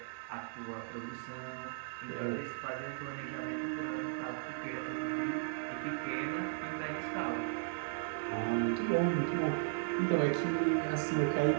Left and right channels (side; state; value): left; silent; digital silence